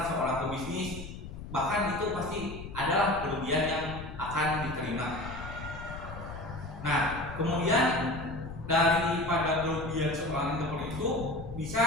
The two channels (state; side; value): noise; left; rumble, 10 dB below the sound